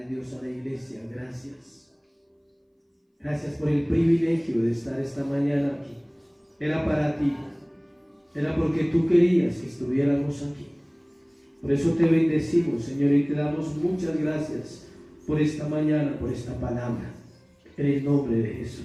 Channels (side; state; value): both; identical; correlation 1.00